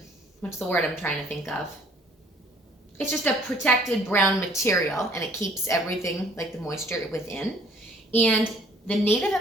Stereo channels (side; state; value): both; normal; correlation 0.59